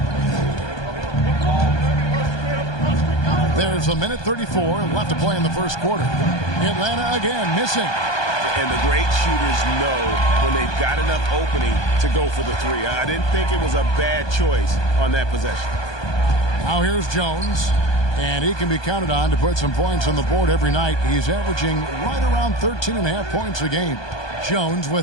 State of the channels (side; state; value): right; late; 1.2 ms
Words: There's 1:34 left to play in the first quarter. Atlanta again missing. And the great shooters know when they've got enough opening to go for the 3. I didn't think it was a bad choice on that possession. Now here's Jones. And he can be counted on to put some points on the board every night. He's averaging right around 13.5 points a game. Jones